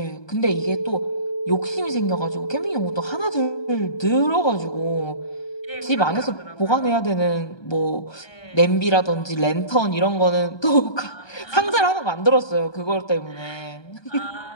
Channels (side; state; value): right; late; 1.2 ms